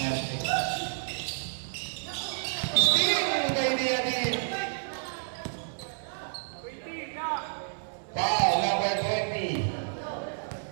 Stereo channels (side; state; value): left; silent; 58 dB below the other